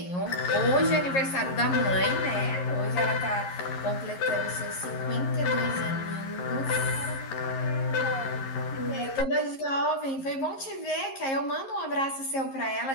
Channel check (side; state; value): right; late; 11 ms